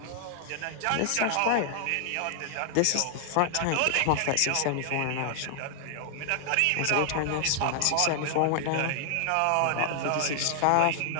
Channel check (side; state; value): both; different; correlation 0.00